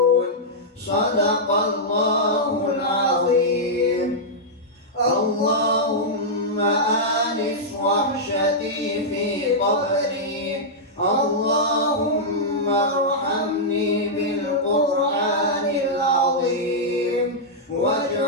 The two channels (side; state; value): both; normal; correlation -0.08